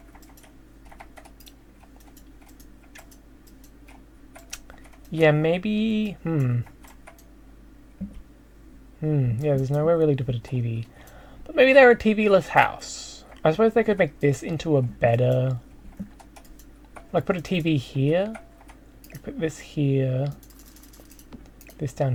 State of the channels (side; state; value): both; identical; correlation 1.00